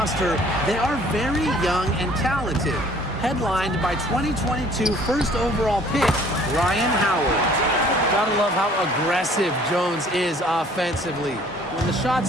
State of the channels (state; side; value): normal; both; correlation 0.55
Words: they are very young and talented. Headlined by 2022 first overall pick, Ryan Howard. Gotta love how aggressive Jones is offensively. When the